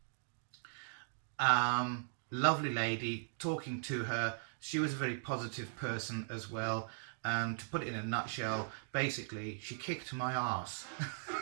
Lovely lady, talking to her. She was a very positive person as well. To put it in a nutshell, basically, she kicked my ass.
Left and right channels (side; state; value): left; silent; digital silence